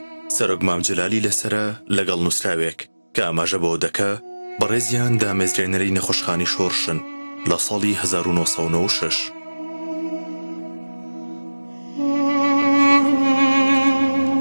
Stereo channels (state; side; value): inverted; both; correlation -1.00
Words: سەرۆک مام جەلالی لەسرە لەگەڵ نووسراوێک کە ئاماژە بەوە دەکا بەڕێزیان دامەزرێنەرەی نەخۆشخانی شۆڕشن لە ساڵی 1996.